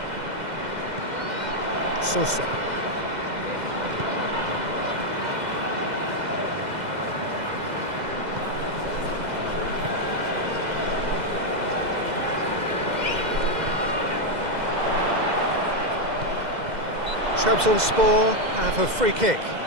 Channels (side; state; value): left; late; 2.0 ms